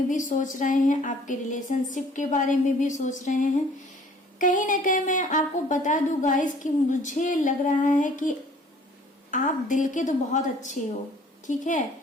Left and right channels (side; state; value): both; normal; correlation 0.54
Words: भी सोच रहे हैं, आपके रिलेशनशिप के बारे में भी सोच रहे हैं। कहीं ना कहीं मैं आपको बता दूं गाइस कि मुझे लग रहा है कि आप दिल के तो बहुत अच्छे हो, ठीक है,